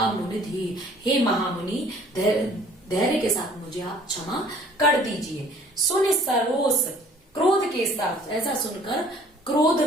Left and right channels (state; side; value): normal; both; correlation 0.54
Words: धीर, हे महामुनि धैर्य के साथ मुझे आप क्षमा कर दीजिए। सुन सरोस, क्रोध के साथ, ऐसा सुनकर क्रोध